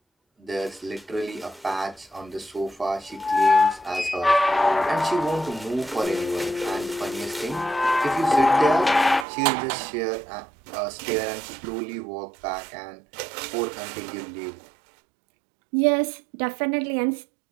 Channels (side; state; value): left; drops out; at 9.2 s